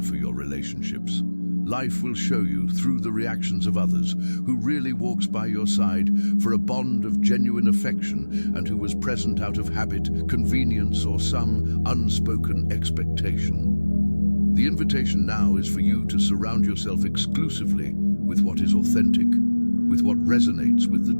for your relationships. Life will show you, through the reactions of others, who really walks by your side for a bond of genuine affection and who was present out of habit, convenience, or some unspoken expectation. The invitation now is for you to surround yourself exclusively with what is authentic, with what resonates with the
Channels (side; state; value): both; inverted; correlation -1.00